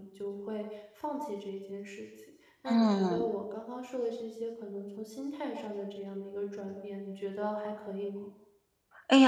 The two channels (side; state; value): both; identical; correlation 1.00